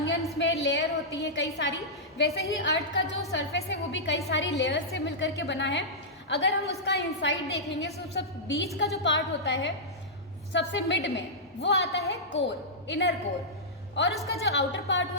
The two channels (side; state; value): both; normal; correlation -0.11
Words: में लेयर होती है कई सारी, वैसे ही अर्थ का जो सरफेस है वो भी कई सारी लेयर से मिलकर के बना है. अगर हम उसका इनसाइड देखेंगे तो सब बीच का जो पार्ट होता है सबसे मिड में वो आता है कोर, इनर कोर, और उसका जो आउटर पार्ट